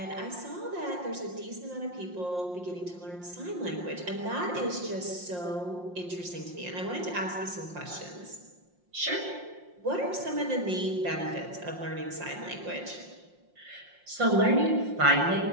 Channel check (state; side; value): late; left; 5.6 ms